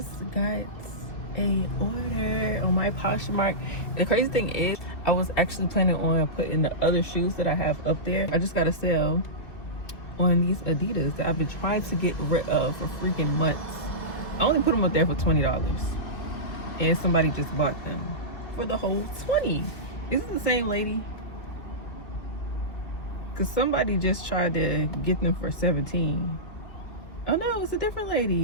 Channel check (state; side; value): late; right; 2.4 ms